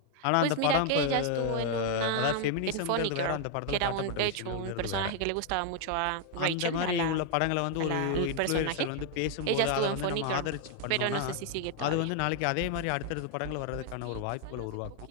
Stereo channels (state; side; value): different; both; correlation 0.00